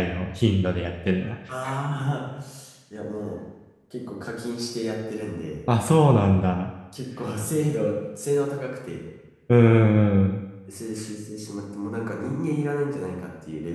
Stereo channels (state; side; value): identical; both; correlation 1.00